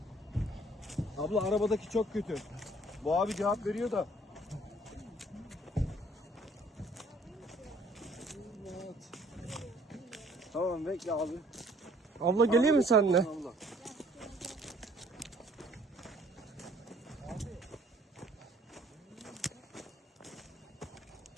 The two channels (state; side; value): normal; both; correlation 0.58